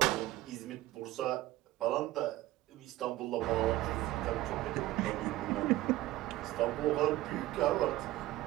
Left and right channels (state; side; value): quieter; left; 16.7 dB